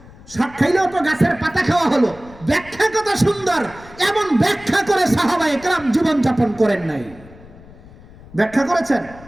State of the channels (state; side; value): noise; left; rumble, 21 dB below the sound